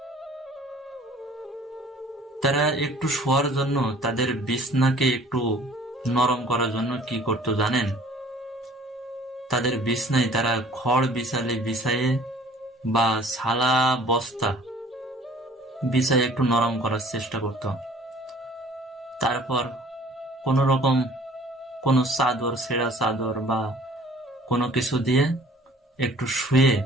তারা একটু শোয়ার জন্য, তাদের বিছনাকে একটু নরম করার জন্য কি করতো জানেন? তাদের বিছনায় তারা খড় বিছাইয়ে বা ছালা বস্তা বিছাইয়ে একটু নরম করার চেষ্টা করত। তারপর কোন রকম কোনো চাদর, ছেঁড়া চাদর বা কোনো কিছু দিয়ে একটু শুয়ে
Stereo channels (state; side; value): normal; both; correlation 0.51